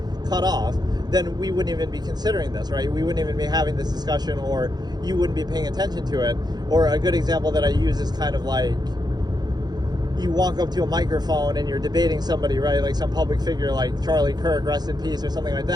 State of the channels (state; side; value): late; left; 0.20 ms